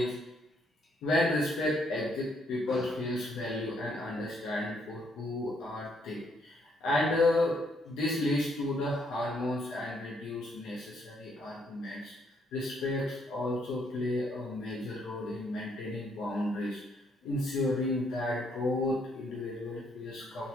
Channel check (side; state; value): both; normal; correlation 0.71